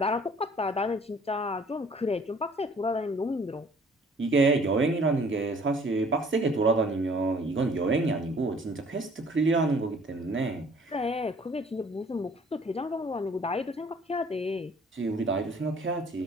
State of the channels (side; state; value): both; normal; correlation 0.55